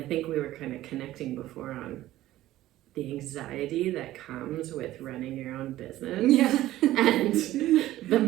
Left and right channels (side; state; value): left; quieter; 15.0 dB